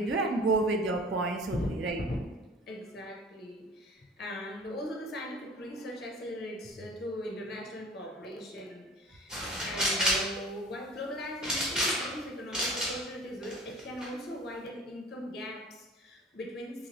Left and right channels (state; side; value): normal; both; correlation 0.44